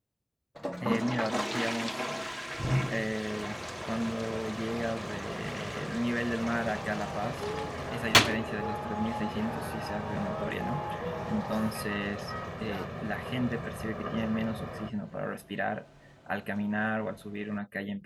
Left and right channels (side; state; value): both; identical; correlation 1.00